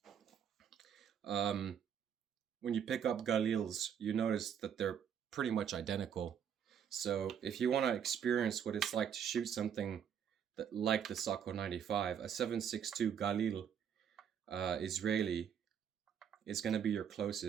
when you pick up Galils, you notice that they're pretty much identical. So if you want to experience what it's like to shoot something that like the Sako 95, a 7.62 Galil Israeli is going to be your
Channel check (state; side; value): quieter; left; 8.3 dB